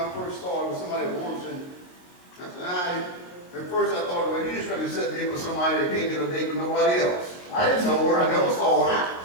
first saw her with somebody that works in, I said, at first I thought, well, you just trying to set me up with somebody that can't get a date with nobody else. I didn't know her, I never saw her.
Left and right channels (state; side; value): late; right; 23 ms